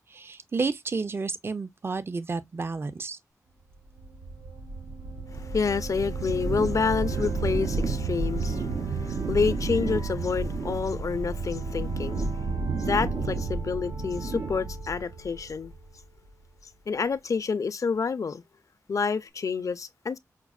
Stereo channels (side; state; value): both; normal; correlation 0.73